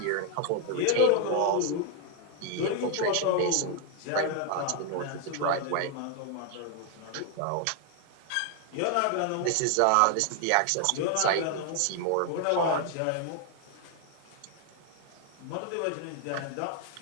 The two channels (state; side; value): different; both; correlation 0.01